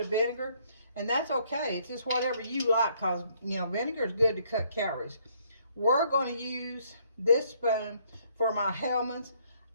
of vinegar, and that's okay. It's just whatever you like, because, you know, vinegar is good to cut calories. We're going to use this spoon for my Hellmann's.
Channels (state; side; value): inverted; both; correlation -0.66